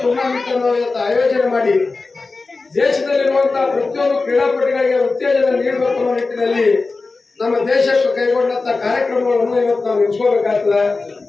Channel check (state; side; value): quieter; right; 3.8 dB